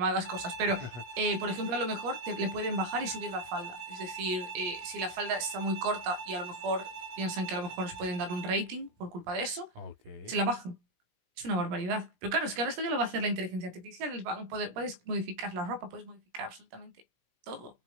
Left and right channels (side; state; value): left; late; 17 ms